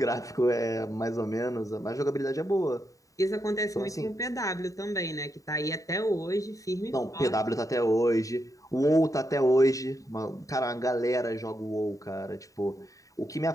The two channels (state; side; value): late; right; 0.16 ms